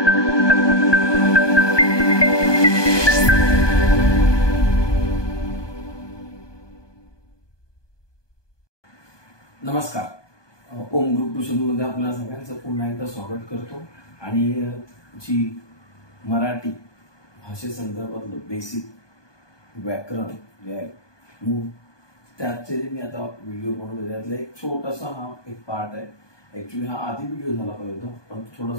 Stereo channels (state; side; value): late; right; 1.2 ms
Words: ओम ग्रुप ट्युशनमध्ये आपल्या सगळ्यांचं पुन्हा एकदा स्वागत करतो. आणि जी मराठी भाषेसंदर्भातलं बेसिक व्याकरण जे आहे मूळ त्याचे मी आता व्हिडिओ बनवले, त्यातला एक छोटासा हा एक पार्ट आहे. ॲक्च्युली हा आधी व्हिडिओ झाला पाहिजे होता, पण